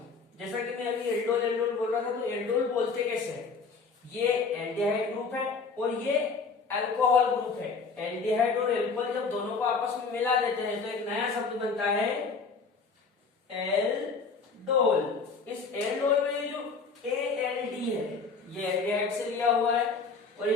जैसा कि मैं अभी एल्डोल एल्डोल बोल रहा था, तो एल्डोल बोलते कैसे है, ये एल्डिहाइड ग्रुप है और ये अल्कोहल ग्रुप है। एल्डिहाइड और अल्कोहल जब दोनों को आपस में मिला देते हैं तो एक नया शब्द बनता है एल्डोल। इस एल्डोल में ये जो ALD है ये एल्डिहाइड से लिया हुआ है और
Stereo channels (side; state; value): right; quieter; 4.7 dB